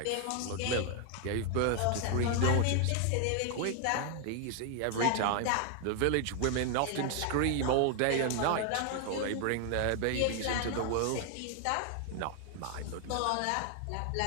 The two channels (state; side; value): different; both; correlation 0.00